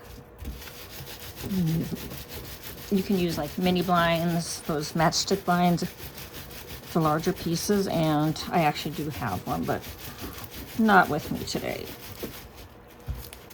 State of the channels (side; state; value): both; identical; correlation 1.00